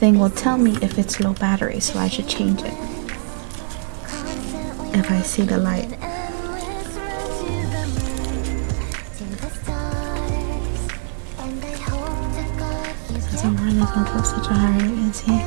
will tell me if it's low battery, so I should change it if I see the light. Somewhere this one goes such a high rate, is he?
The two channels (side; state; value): left; silent; digital silence